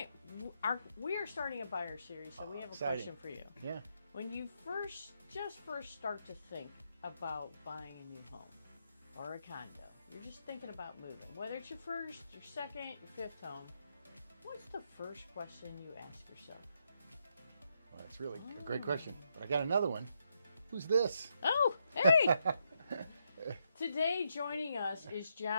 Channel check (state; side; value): inverted; both; correlation -0.80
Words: we are starting a buyer series, so we have a exciting. question for you. Yeah. When you first start to think about buying a new home or a condo, you're just thinking about moving, whether it's your first, your second, your fifth home, what's the first question you ask yourself? Well, that's really a great question. But I got another one. Who's this? Oh, hey! Today joining us is